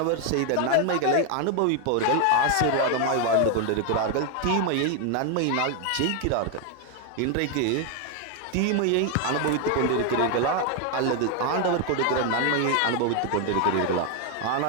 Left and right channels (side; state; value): both; different; correlation 0.01